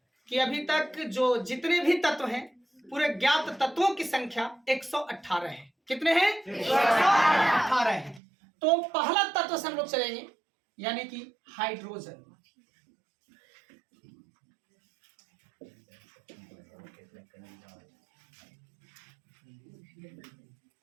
कि अभी तक जो जितने भी तत्व हैं, पूरे ज्ञात तत्वों की संख्या 118 है। कितने हैं? 118 है। तो पहला तत्व से हम लोग चलेंगे, यानी कि हाइड्रोजन।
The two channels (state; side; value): drops out; left; at 8.2 s